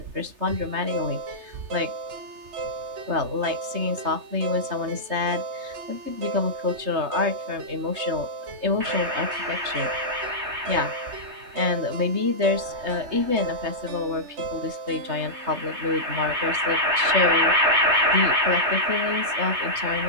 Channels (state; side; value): late; left; 3.2 ms